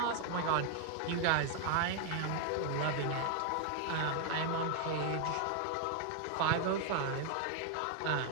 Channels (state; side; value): different; both; correlation 0.00